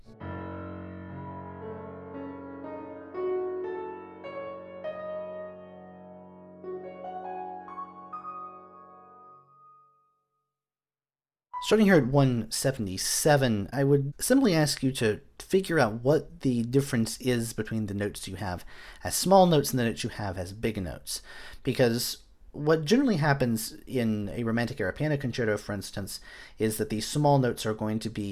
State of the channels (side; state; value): both; identical; correlation 1.00